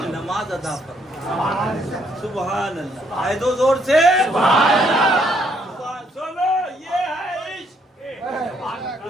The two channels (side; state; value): both; normal; correlation 0.70